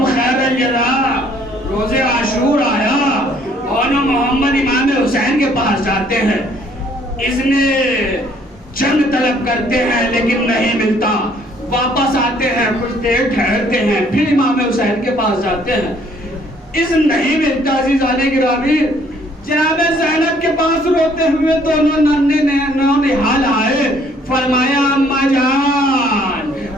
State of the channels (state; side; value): normal; both; correlation 0.62